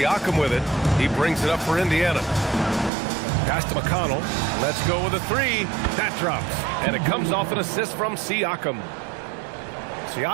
with it. He brings it up for Indiana. Pass to McConnell. Let's go with a three. That drops. And it comes off an assist from Siakam.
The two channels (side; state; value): left; drops out; at 2.9 s